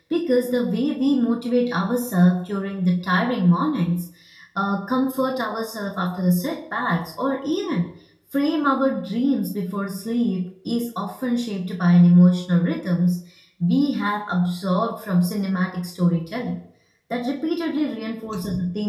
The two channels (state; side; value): identical; both; correlation 1.00